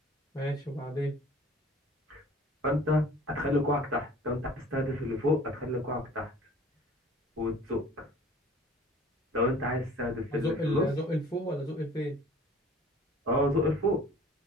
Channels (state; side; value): normal; both; correlation 0.48